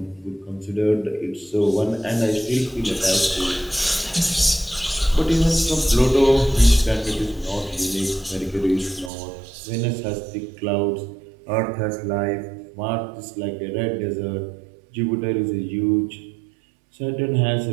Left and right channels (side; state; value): left; drops out; at 9.1 s